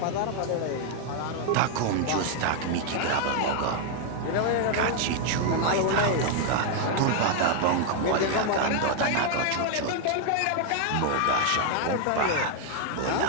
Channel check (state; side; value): different; both; correlation 0.00